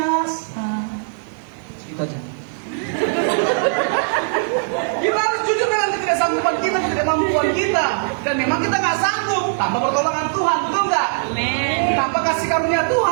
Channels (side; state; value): left; silent; digital silence